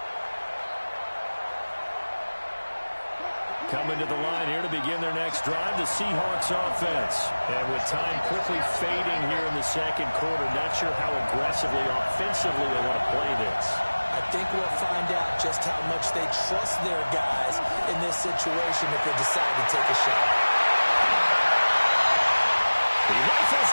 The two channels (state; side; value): inverted; both; correlation -1.00